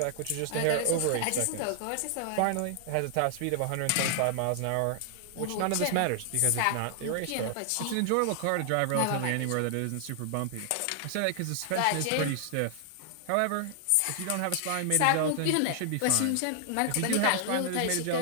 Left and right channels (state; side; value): different; both; correlation 0.00